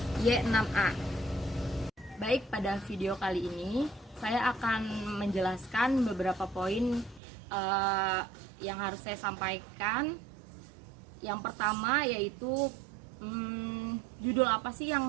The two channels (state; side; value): drops out; left; at 7.2 s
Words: Y6A. Baik, pada video kali ini saya akan menjelaskan beberapa poin yang harus saya sampaikan. Yang pertama yaitu judul apa sih